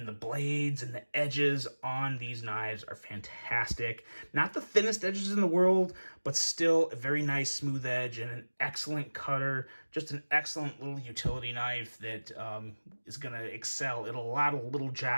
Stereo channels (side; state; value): both; inverted; correlation -1.00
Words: the blades and the edges on these knives are fantastic. Not the thinnest edges in the world, but still a very nice smooth edge and an excellent cutter. Just an excellent little utility knife that is going to excel at a lot of little